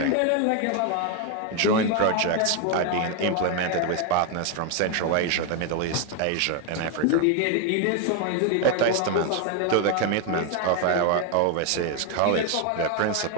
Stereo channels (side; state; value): both; different; correlation 0.01